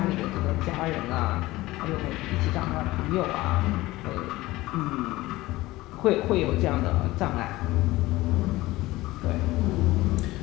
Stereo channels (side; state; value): right; quieter; 18.7 dB